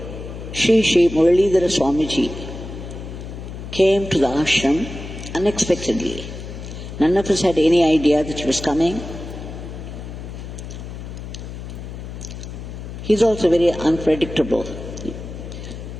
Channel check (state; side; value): noise; left; hum, 10 dB below the sound